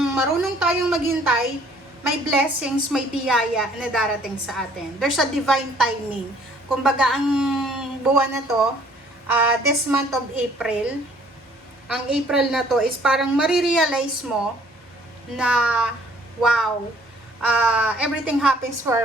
marunong tayong maghintay, may blessings, may biyaya na darating sa atin. There's a divine timing. Kumbaga, ang buwan na to, this month of April, ang April na to is parang marirealize mo na, wow, everything happens for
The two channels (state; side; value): normal; both; correlation 0.59